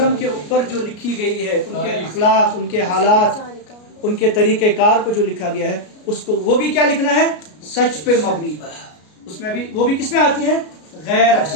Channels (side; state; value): right; late; 33 ms